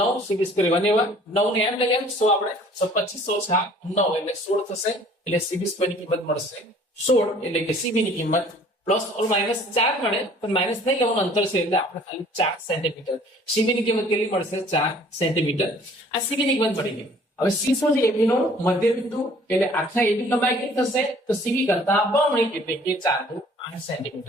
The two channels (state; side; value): normal; both; correlation 0.54